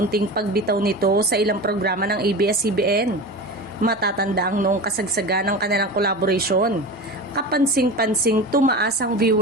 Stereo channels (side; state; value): both; normal; correlation 0.29